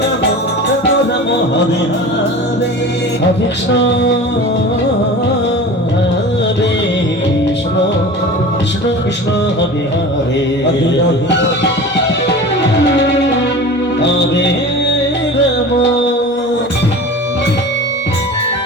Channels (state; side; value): normal; both; correlation 0.35